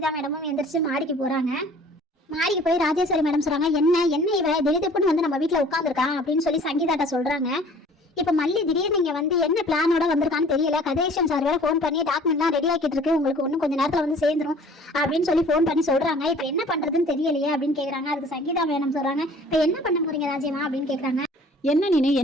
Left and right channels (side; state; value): both; normal; correlation 0.50